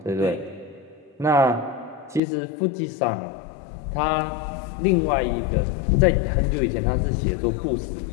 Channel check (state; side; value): drops out; right; at 2.2 s